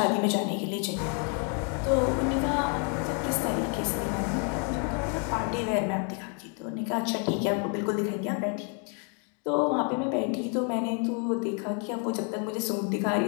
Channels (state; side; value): quieter; right; 40.0 dB